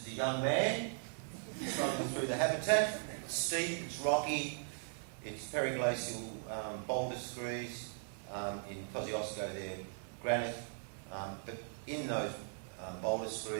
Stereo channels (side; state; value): left; silent; 52 dB below the other